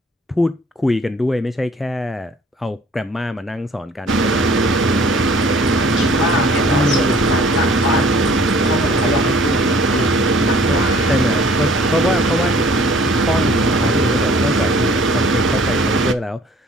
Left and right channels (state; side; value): normal; both; correlation 0.54